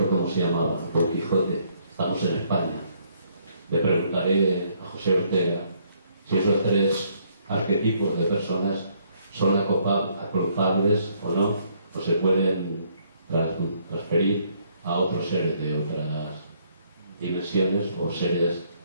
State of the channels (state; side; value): inverted; both; correlation -0.68